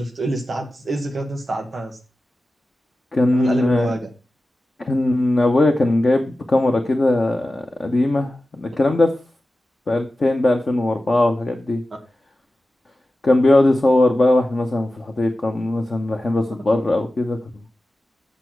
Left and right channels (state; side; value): normal; both; correlation 0.94